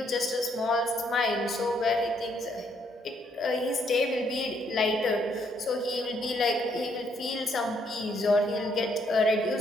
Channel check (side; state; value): both; normal; correlation 0.71